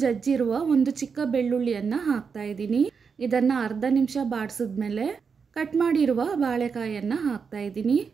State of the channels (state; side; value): quieter; left; 5.8 dB